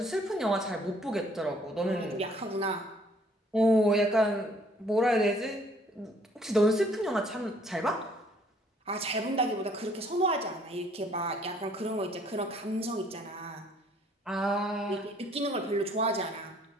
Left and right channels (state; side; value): normal; both; correlation 0.61